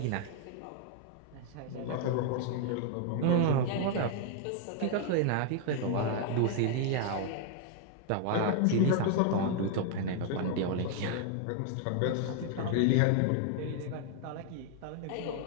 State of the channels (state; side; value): different; both; correlation 0.00